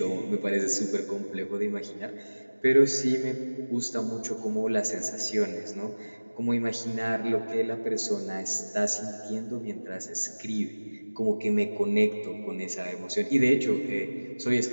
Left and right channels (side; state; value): both; inverted; correlation -1.00